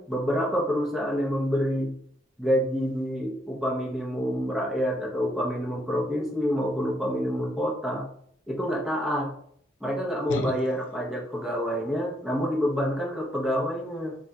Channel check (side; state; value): both; normal; correlation 0.74